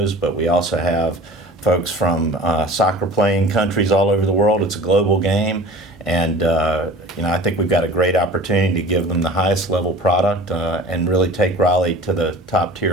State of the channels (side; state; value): both; normal; correlation 0.42